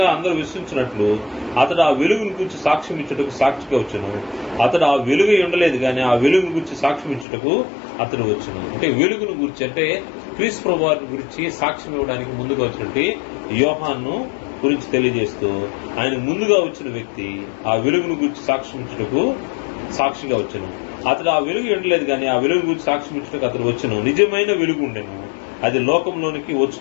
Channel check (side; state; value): right; drops out; at 7.2 s